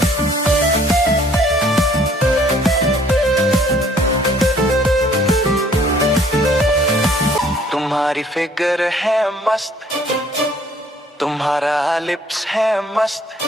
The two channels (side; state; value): both; normal; correlation 0.59